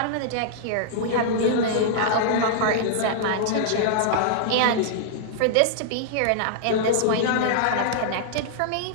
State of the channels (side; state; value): both; different; correlation -0.01